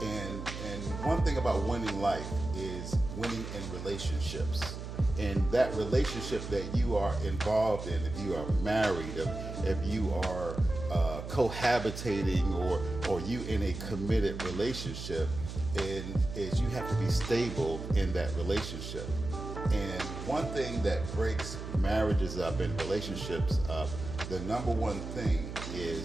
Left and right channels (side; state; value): right; noise; hum, 8 dB below the sound